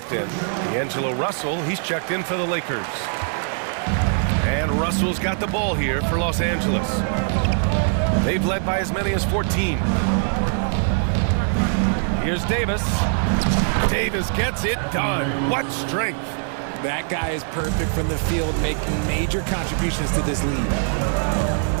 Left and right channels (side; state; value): left; silent; 58 dB below the other